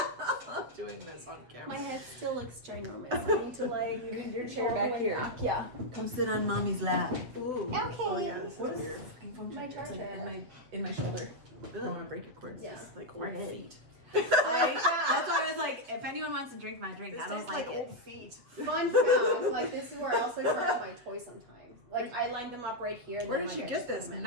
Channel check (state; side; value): late; left; 7.7 ms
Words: Doing this on camera. My head still looks ginormous. I need to Need your chair back here. Yeah. Come sit on mommy's lap. Ooh. Okay. Oh yeah, this What is is weird. My charger. in my shoulder. I don't want to break your cords. Yeah. It's like We're old good. feet. That's why I was like, if anyone wants to drink my drink, This I don't tastes like like it. old feet. Fun fact, like this is where I also charge my toys sometimes. Like I line them up right here. And Where then did you I get just put this? them in.